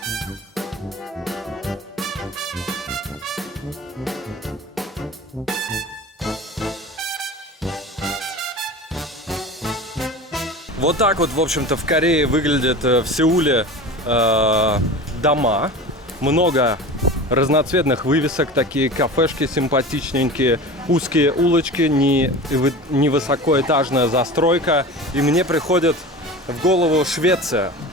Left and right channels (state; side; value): normal; both; correlation 0.34